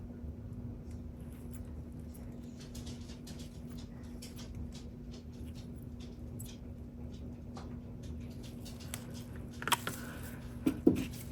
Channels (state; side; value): identical; both; correlation 1.00